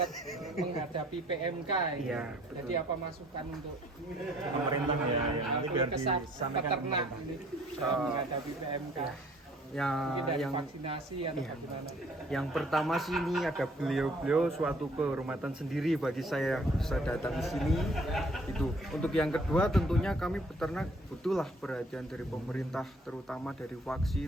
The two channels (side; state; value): both; normal; correlation 0.58